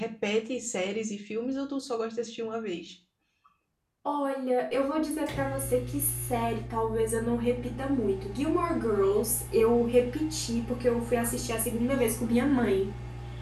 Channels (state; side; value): identical; both; correlation 1.00